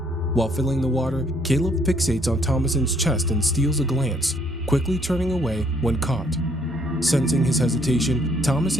While filling the water, Caleb fixates on Thomasin's chest and steals a glance, quickly turning away when caught. Sensing his hesitation,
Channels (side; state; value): both; normal; correlation 0.67